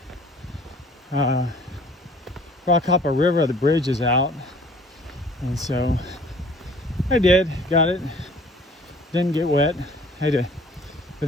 rock hop a river. The bridge is out, and so I did, got it. Didn't get wet. But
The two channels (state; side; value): normal; both; correlation 0.52